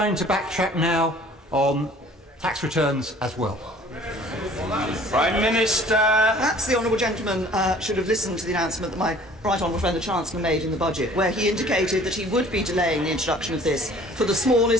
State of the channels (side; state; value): both; normal; correlation 0.51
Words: to backtrack now on tax returns as well? Prime Minister. Perhaps the honourable gentleman should have listened to the announcement that my right honourable friend the Chancellor made in the budget, where he indicated that he would be delaying the introduction of this for the